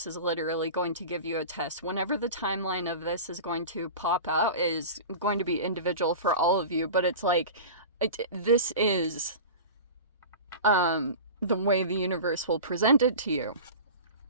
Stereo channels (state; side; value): inverted; both; correlation -0.33